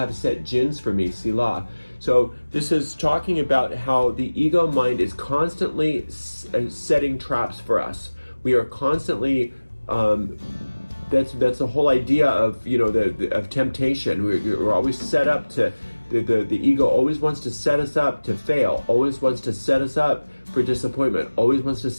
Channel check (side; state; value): both; inverted; correlation -1.00